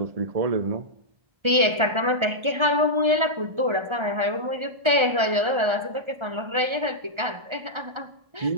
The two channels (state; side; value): late; left; 1.3 ms